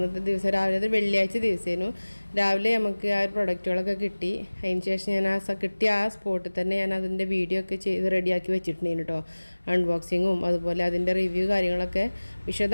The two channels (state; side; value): inverted; both; correlation -1.00